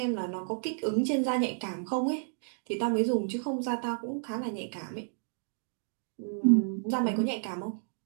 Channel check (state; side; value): silent; left; digital silence